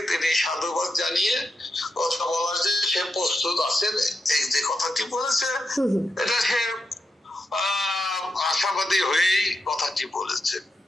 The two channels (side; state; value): both; normal; correlation 0.86